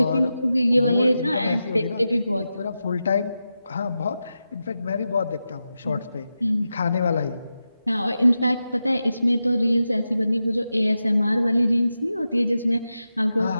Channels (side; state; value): both; inverted; correlation -0.91